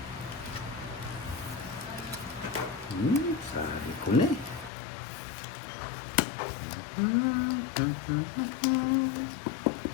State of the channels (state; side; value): drops out; right; at 4.7 s